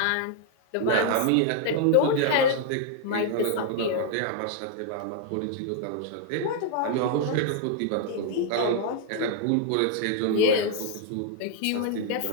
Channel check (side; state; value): both; different; correlation 0.00